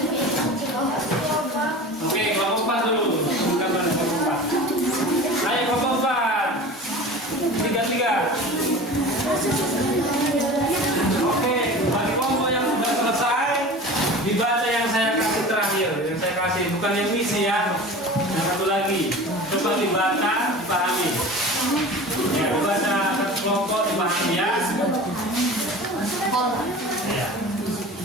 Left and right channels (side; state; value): both; normal; correlation 0.37